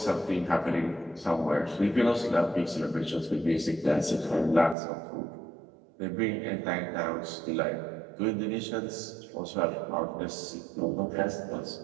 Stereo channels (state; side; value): drops out; left; at 4.8 s